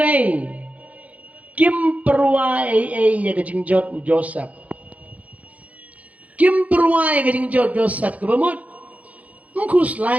kim perwa ya ke jingjot Joseph kim perwa ya ke jingjot Joseph ke ba mut mkus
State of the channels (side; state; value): left; late; 0.069 ms